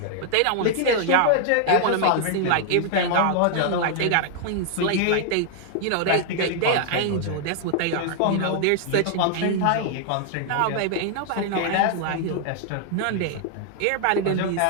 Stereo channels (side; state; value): both; different; correlation 0.00